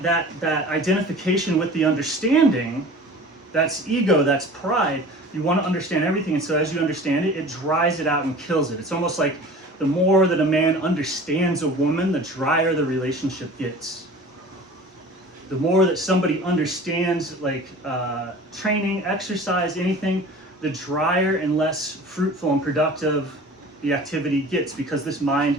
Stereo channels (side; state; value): both; normal; correlation 0.41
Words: identification with the understanding, that's ego, that's pride. You want to understand everything, and so as you understand it, it dries it out and kills it. It's almost like the more that a man understands a woman, the drier the relationship gets. The more that somebody understands, like training, exercise, anything, the drier and less fruitful and productive the activity gets, because this